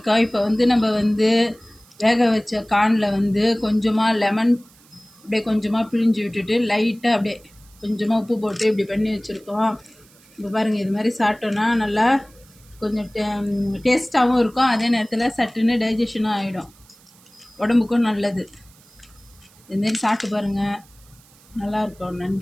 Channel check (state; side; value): noise; right; hiss, 28 dB below the sound